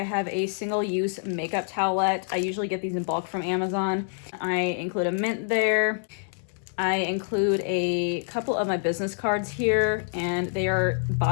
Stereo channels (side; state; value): right; silent; digital silence